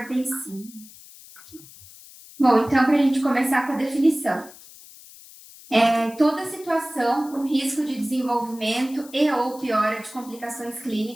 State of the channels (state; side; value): noise; left; hiss, 20 dB below the sound